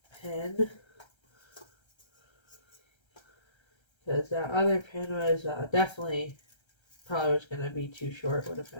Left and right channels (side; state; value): right; late; 1.3 ms